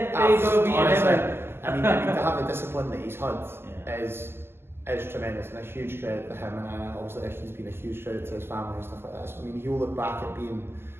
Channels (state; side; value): late; left; 0.12 ms